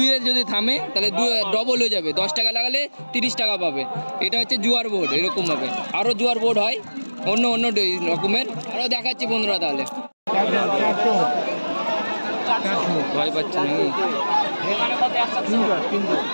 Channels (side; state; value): both; inverted; correlation -1.00